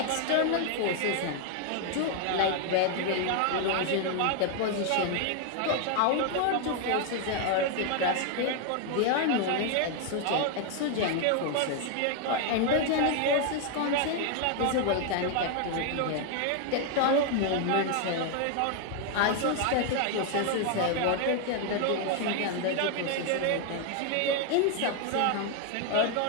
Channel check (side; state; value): both; different; correlation 0.01